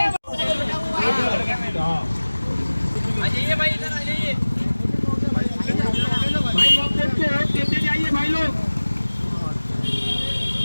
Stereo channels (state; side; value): inverted; both; correlation -1.00